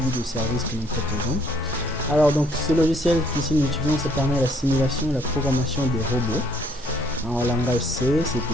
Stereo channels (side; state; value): both; normal; correlation 0.64